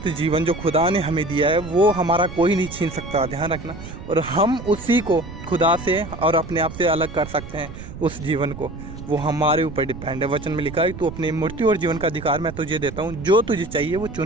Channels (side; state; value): right; noise; rumble, 12 dB below the sound